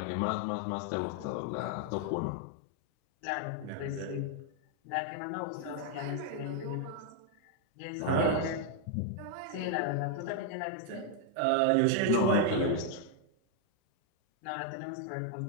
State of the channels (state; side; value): different; both; correlation 0.00